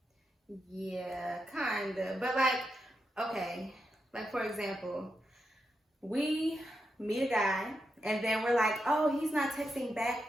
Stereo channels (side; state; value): both; normal; correlation 0.86